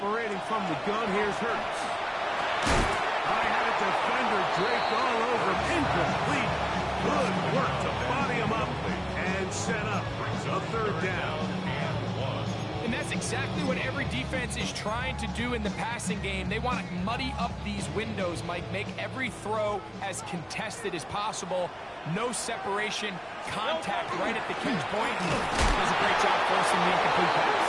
from the gun, here's Hurts. I had a defender draped all over him. Incomplete. Good work to body him up and set up a third down. And that's exactly what every defense is trying to do in the passing game. They want to muddy up these windows, Mike, make every throw as contested as possible. No separation, contact right at the catch point. Does a great job forcing the incomplete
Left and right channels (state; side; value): identical; both; correlation 1.00